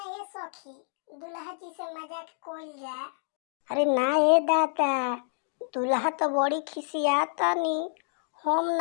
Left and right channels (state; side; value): silent; right; digital silence